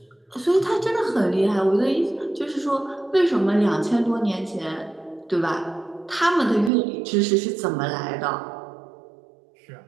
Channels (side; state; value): left; drops out; at 6.7 s